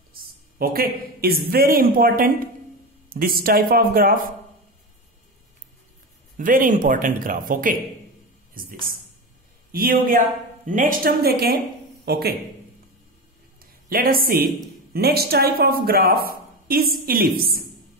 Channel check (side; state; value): both; normal; correlation 0.21